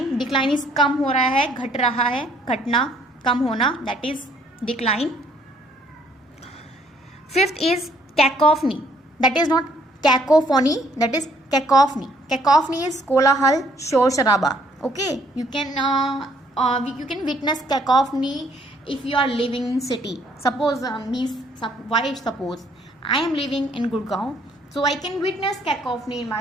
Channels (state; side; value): normal; both; correlation 0.65